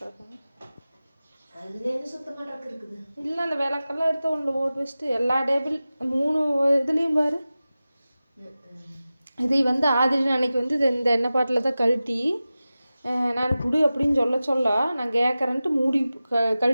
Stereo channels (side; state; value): both; inverted; correlation -0.95